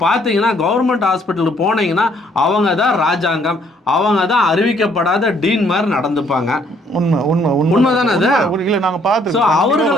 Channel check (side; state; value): both; normal; correlation 0.65